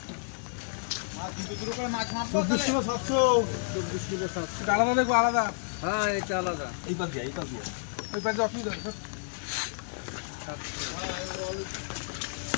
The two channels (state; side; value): silent; right; digital silence